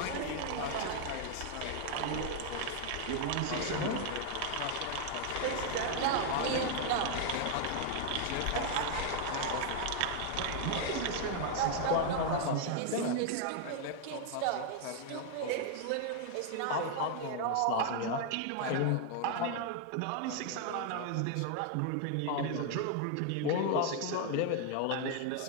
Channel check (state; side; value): different; both; correlation 0.00